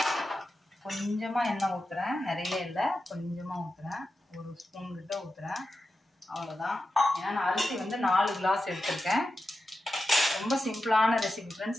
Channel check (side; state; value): both; normal; correlation 0.91